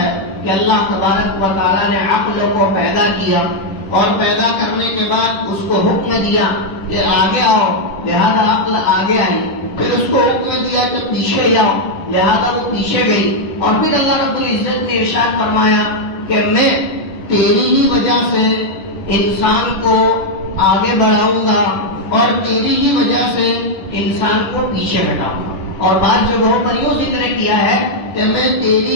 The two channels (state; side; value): late; right; 10 ms